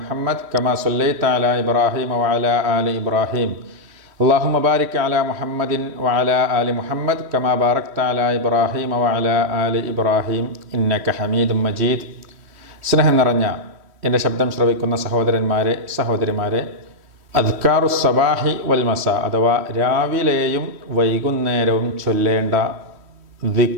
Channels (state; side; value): late; left; 3.1 ms